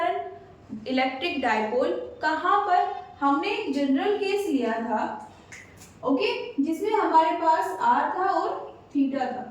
इलेक्ट्रिक डायपोल। कहां पर, हमने एक जनरल केस लिया था ओके, जिसमें हमारे पास R था और थीटा था।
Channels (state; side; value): identical; both; correlation 1.00